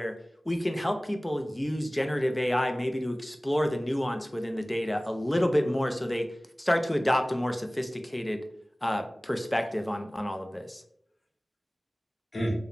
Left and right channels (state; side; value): normal; both; correlation 0.98